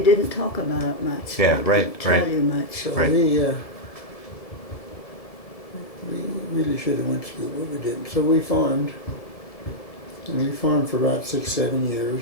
talk about it much. Yeah, They right, didn't tell right. you much. so Right. we really should have went to school, but we didn't. So we farmed, and we farmed for about 6-7 years,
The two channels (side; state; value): right; late; 1.7 ms